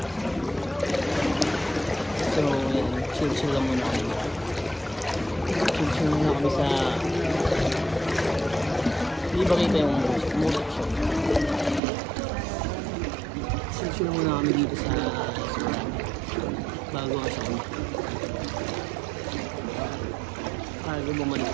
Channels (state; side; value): drops out; left; at 11.8 s